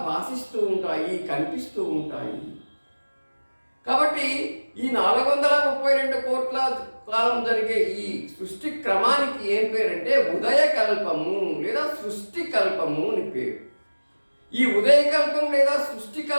భాషిస్తూ ఉంటాయి, కనిపిస్తూ ఉంటాయి. కాబట్టి ఈ 432 కోట్ల కాలం జరిగే ఈ సృష్టి క్రమానికి ఏం పేరంటే ఉదయకల్పము లేదా సృష్టి కల్పము అని పేరు. ఈ ఉదయకల్పం లేదా సృష్టి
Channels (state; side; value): inverted; both; correlation -1.00